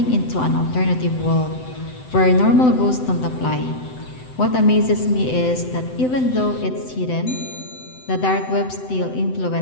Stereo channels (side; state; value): right; late; 7.9 ms